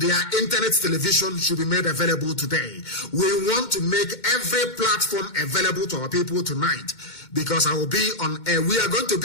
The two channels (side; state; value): right; late; 2.2 ms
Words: internet television should be made available today. We want to make every platform available to our people tonight. because I will be on air. We are going to